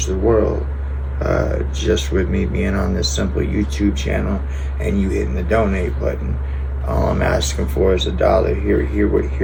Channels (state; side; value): identical; both; correlation 1.00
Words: the world, just with me being on this simple YouTube channel and you hitting the donate button. All I'm asking for is $1.